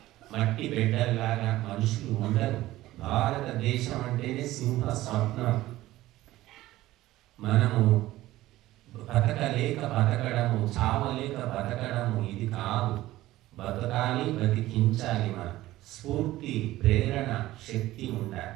మట్టి బిడ్డల్లాగా మనుషులు ఉండరు. భారతదేశం అంటేనే సింహ స్వప్నం. మనము బతకలేక బతకడము, చావలేక బతకడము ఇది కాదు. బతకాలి, బతికించాలి. మనం స్ఫూర్తి, ప్రేరణ, శక్తి ఉండాలి.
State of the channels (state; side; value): quieter; left; 16.2 dB